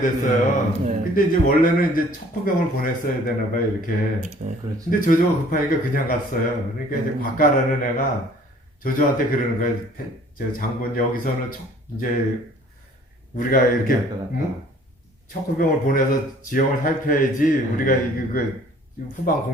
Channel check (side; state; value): both; normal; correlation 0.55